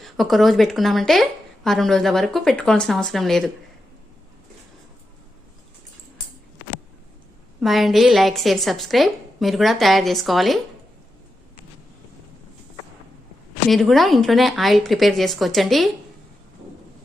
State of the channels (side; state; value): both; normal; correlation 0.88